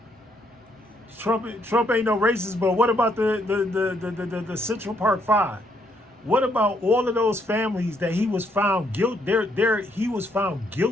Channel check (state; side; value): normal; both; correlation 0.72